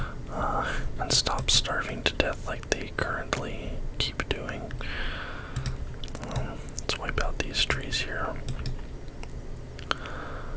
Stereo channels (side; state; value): both; identical; correlation 1.00